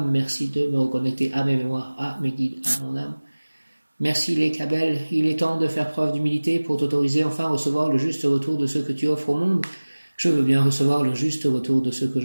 Merci de me reconnecter à mes mémoires, à mes guides, à mon âme. Merci les Cabelles, il est temps de faire preuve d'humilité pour t'autoriser enfin à recevoir le juste retour de ce que tu offres au monde. Je veux bien recevoir le juste retour de ce que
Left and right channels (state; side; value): inverted; both; correlation -1.00